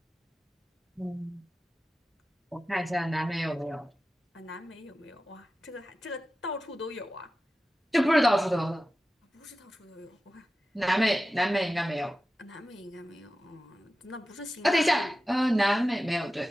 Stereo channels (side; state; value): both; normal; correlation 0.94